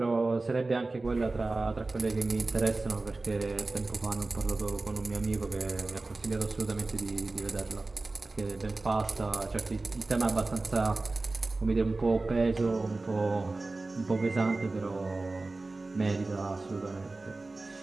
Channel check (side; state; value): left; quieter; 3.3 dB